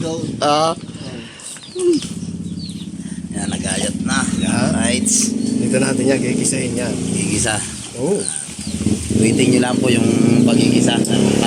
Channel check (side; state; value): both; identical; correlation 1.00